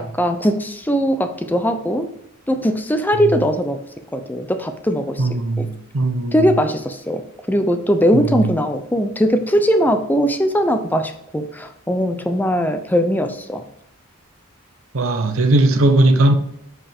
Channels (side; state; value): both; normal; correlation 0.74